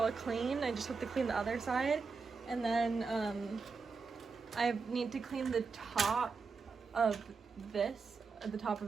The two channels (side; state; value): left; quieter; 4.8 dB